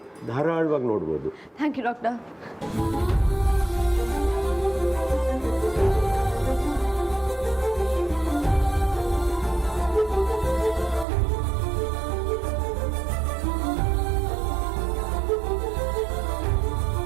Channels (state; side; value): drops out; left; at 11.1 s